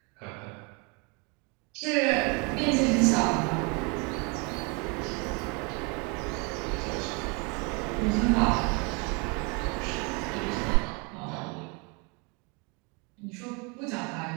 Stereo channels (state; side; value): quieter; left; 31.2 dB